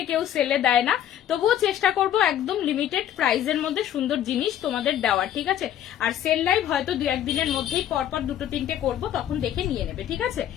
কেউ সেলে দেয় না। তবুও চেষ্টা করবো একদম লিমিটেড প্রাইসের মধ্যে সুন্দর জিনিস তোমাদের দেওয়ার, ঠিক আছে। আর সেল লাইভ হয়তো দু একদিনের মধ্যেই পরপর দুটো তিনটে করবো, তখন দেখে নিয়ে নেবে, ঠিক আছে।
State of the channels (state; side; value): quieter; right; 11.0 dB